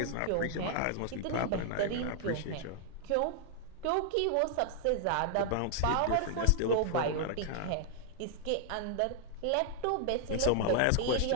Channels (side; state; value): both; different; correlation 0.00